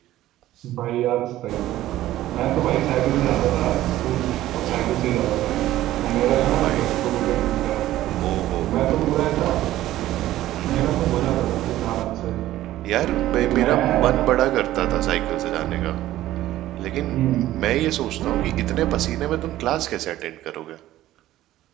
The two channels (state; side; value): quieter; left; 14.6 dB